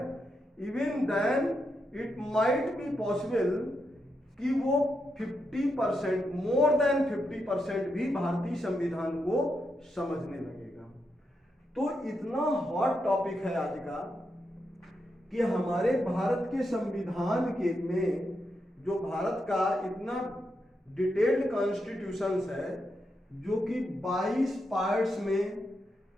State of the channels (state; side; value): normal; both; correlation 0.84